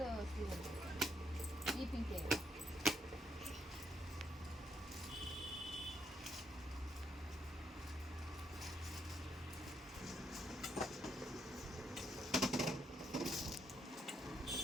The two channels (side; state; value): both; normal; correlation 0.76